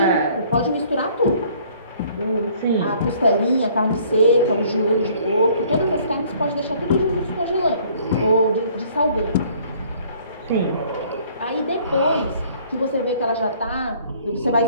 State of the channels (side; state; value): both; inverted; correlation -0.58